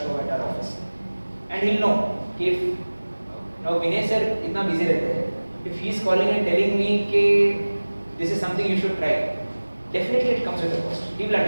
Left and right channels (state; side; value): inverted; both; correlation -1.00